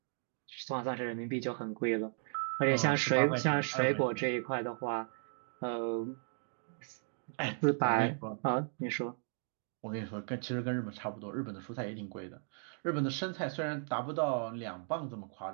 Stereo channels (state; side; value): silent; left; 54 dB below the other